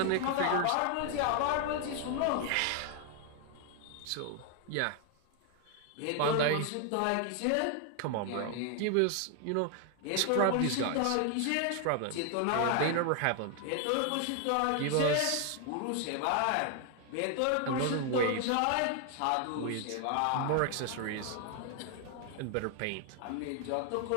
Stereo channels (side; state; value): both; different; correlation 0.00